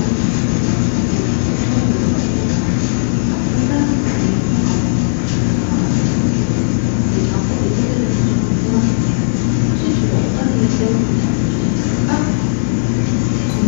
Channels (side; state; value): right; silent; digital silence